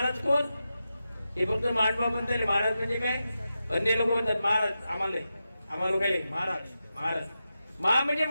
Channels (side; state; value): both; inverted; correlation -0.90